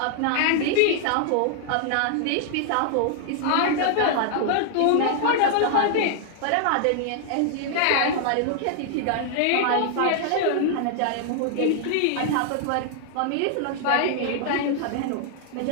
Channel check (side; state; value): both; different; correlation 0.00